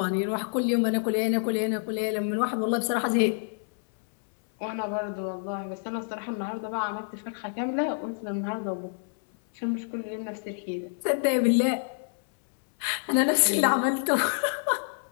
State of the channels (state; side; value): silent; right; 60 dB below the other